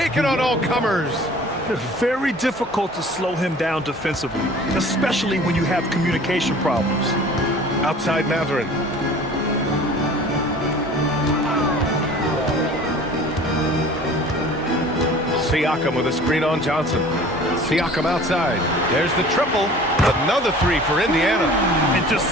on all comers. It's very difficult to slow him down defensively, especially when you have communication problems. Outside Mathurin. Siakam with a screen on Johnson. Siakam outside. There's the triple. Another 3 for Indiana. And just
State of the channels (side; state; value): both; normal; correlation 0.46